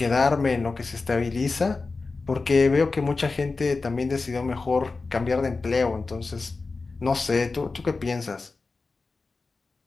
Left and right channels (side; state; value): right; quieter; 3.9 dB